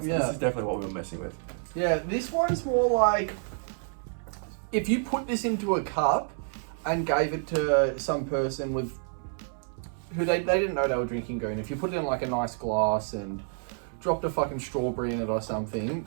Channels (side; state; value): left; silent; 59 dB below the other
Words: is definitely what we were messing with. Yeah, this one's more like if you put this into a cup and gave it to some person with who they didn't know they were drinking Goon. If you put it in like a nice glass and dropped a fucking strawberry in it or something,